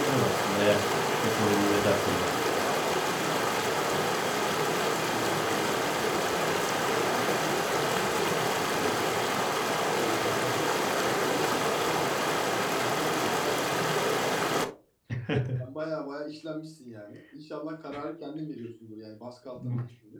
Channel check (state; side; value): identical; both; correlation 1.00